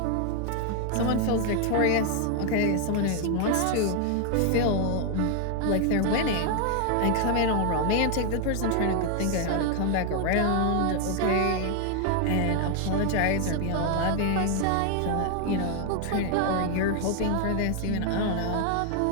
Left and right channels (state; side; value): different; both; correlation 0.00